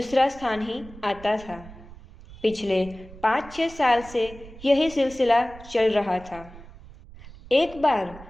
स्थान ही आता था। पिछले 5-6 साल से यही सिलसिला चल रहा था। एक बार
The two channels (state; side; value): noise; right; rumble, 18 dB below the sound